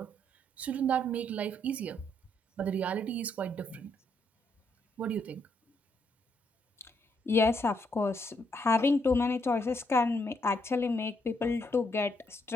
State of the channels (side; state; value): both; normal; correlation 0.74